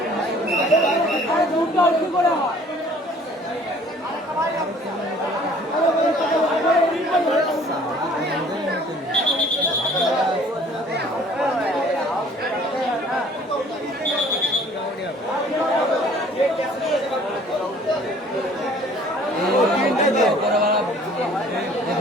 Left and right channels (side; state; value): both; normal; correlation 0.53